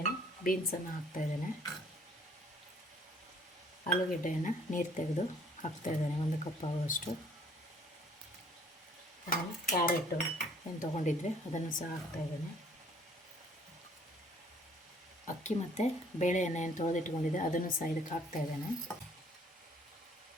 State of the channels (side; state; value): both; normal; correlation 0.59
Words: ಬೀನ್ಸನ್ನು ಹಾಕ್ತಾಯಿದ್ದೇನೆ. ಆಲೂಗೆಡ್ಡೆಯನ್ನು ನೀರು ತೆಗೆದು ಹಾಕ್ತಾಯಿದ್ದೇನೆ 1 ಕಪ್ ಆಗುವಷ್ಟು. ಕ್ಯಾರೆಟು ಏನು ತೊಗೊಂಡಿದ್ವಿ ಅದನ್ನು ಸಹ ಹಾಕ್ತಾಯಿದ್ದೇನೆ. ಅಕ್ಕಿ ಮತ್ತು ಬೇಳೆಯನ್ನು ಏನು ತೊಳೆದಿಟ್ಕೊಂಡಿದ್ದೆ ಅದನ್ನು ಸಹ ಇದಕ್ಕೆ ಹಾಕ್ತಾಯಿದ್ದೇನೆ.